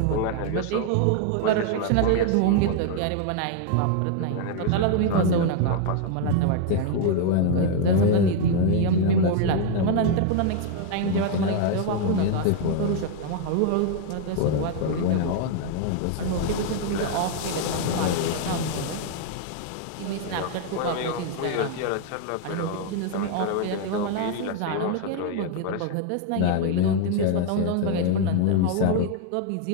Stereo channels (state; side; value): different; both; correlation 0.00